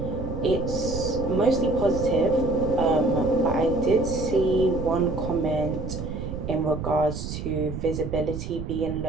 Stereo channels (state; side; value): noise; right; rumble, 6 dB below the sound